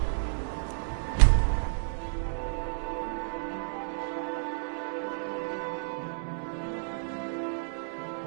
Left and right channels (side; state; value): left; silent; digital silence